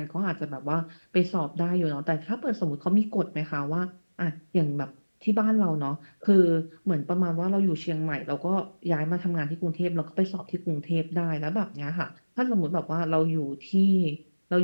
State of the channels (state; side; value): inverted; both; correlation -1.00